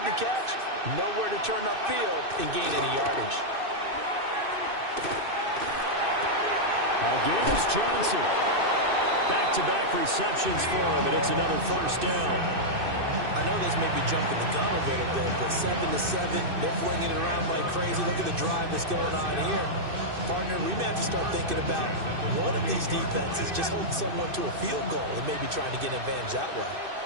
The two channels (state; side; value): late; left; 2.6 ms